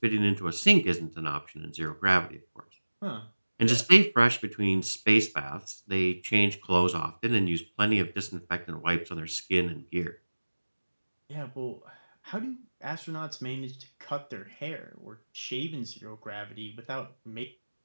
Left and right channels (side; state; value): both; inverted; correlation -1.00